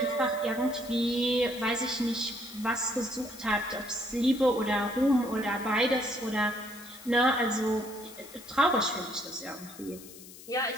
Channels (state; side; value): noise; left; hiss, 17 dB below the sound